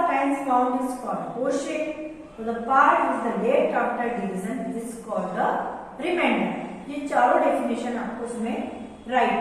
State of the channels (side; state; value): both; identical; correlation 1.00